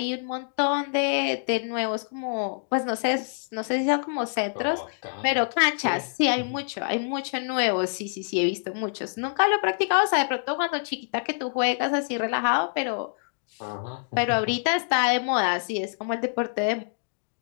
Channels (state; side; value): silent; right; digital silence